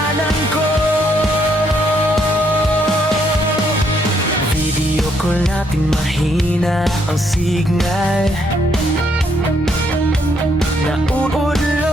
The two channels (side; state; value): both; normal; correlation 0.72